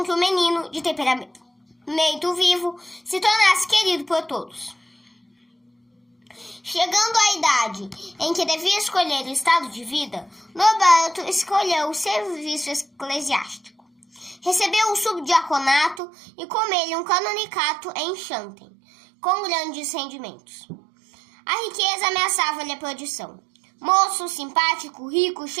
que o menino, de temperamento vivo, se tornasse querido por todos. Chegando à idade em que devia escolher o estado de vida, Norberto escolheu o serviço eclesiástico. Recebeu o subdiaconato e com ele um canonicato em Xanten, com grandes rendimentos. A riqueza ameaçava-lhe a perdição. Moço, simpático, rico,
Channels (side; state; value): left; drops out; at 16.0 s